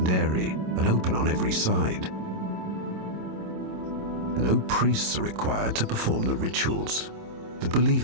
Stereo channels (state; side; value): late; left; 27 ms